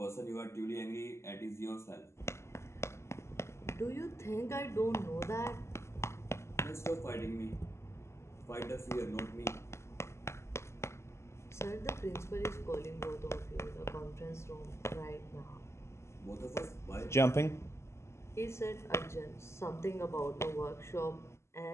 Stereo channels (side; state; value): right; late; 0.13 ms